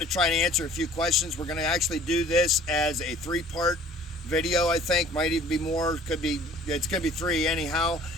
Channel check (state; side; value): normal; both; correlation 0.51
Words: to try and answer a few questions. We're going to actually do this as a three-part video, I think. Might even be more. It's going to be three anyhow.